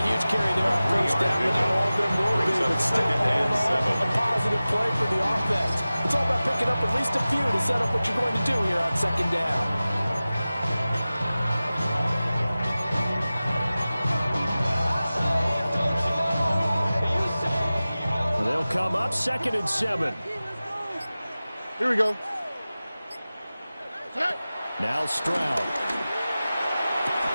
huge carry there on first down, but not all of them will be, but still a positive play for the offense. It's all about picking up at least a few to set up what you're going to do here on 2nd down. They'll come up 2nd and 7. Here we go. Now Stroud.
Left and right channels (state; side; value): inverted; both; correlation -0.96